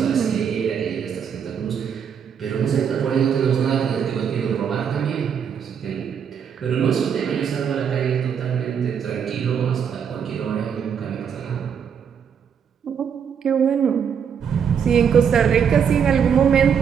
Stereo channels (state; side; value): quieter; left; 7.5 dB